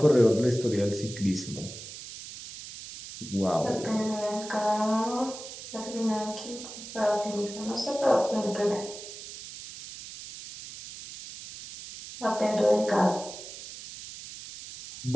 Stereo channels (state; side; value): noise; right; hiss, 12 dB below the sound